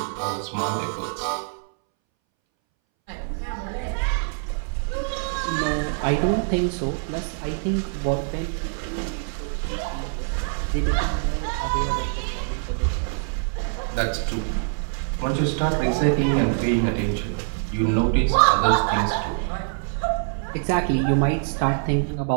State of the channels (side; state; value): left; silent; 62 dB below the other